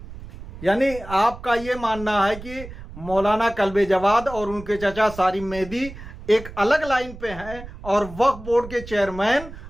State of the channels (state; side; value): noise; right; rumble, 14 dB below the sound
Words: यानी आपका ये मानना है कि मौलाना कल्बे जवाद और उनके चाचा सारिम मेहदी एक अलग लाइन पे हैं और वक्फ बोर्ड के चेयरमैन